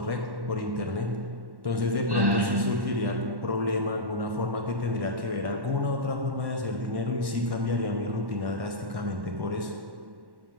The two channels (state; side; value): late; left; 1.1 ms